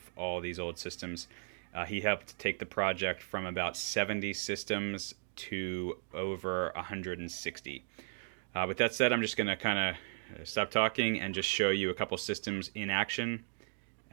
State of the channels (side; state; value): left; silent; digital silence